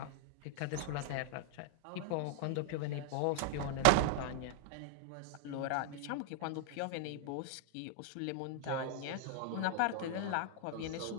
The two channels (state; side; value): different; both; correlation 0.00